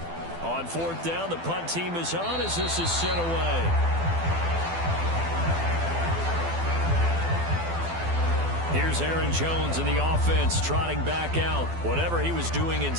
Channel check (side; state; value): left; late; 12 ms